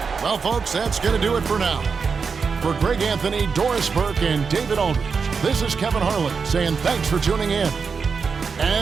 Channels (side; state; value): left; quieter; 5.4 dB